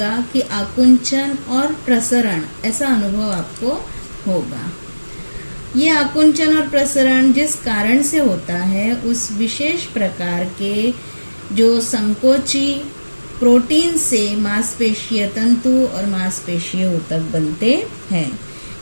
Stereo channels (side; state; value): both; inverted; correlation -1.00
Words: कि आकुंचन और प्रसरण, ऐसा अनुभव आपको होगा। ये आकुंचन और प्रसरण जिस कारण से होता है उस विशेष प्रकार के जो संकोची प्रोटीन से मांसपेशीय तंतु और मांसपेशीय ऊतक बनते हैं।